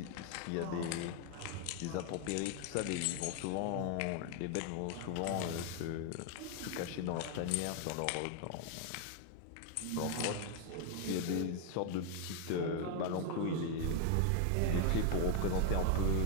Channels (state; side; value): different; both; correlation 0.00